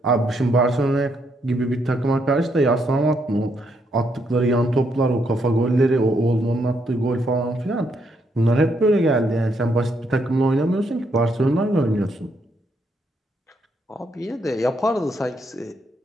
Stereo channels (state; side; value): normal; both; correlation 0.76